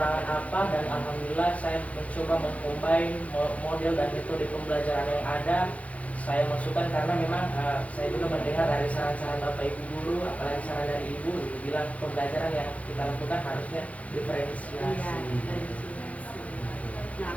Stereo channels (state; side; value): late; right; 0.066 ms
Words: apa, dan alhamdulillah saya mencoba mengcombine model dan metode pembelajaran yang ada. Saya masukkan karena memang saya juga mendengar dari saran-saran Bapak Ibu guru, apalagi saran dari Ibu, itu bilang pembelajaran yang kita lakukan harusnya diferensiasi. Nah,